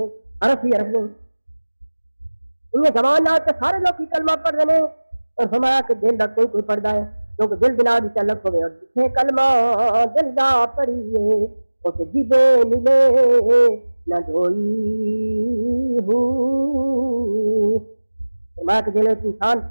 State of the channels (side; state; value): both; inverted; correlation -1.00